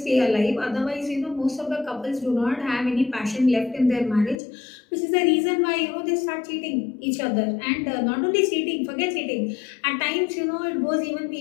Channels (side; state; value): right; drops out; at 4.4 s